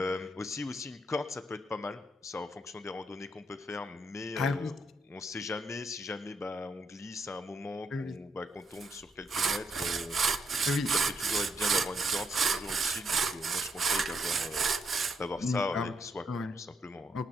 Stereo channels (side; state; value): both; normal; correlation 0.76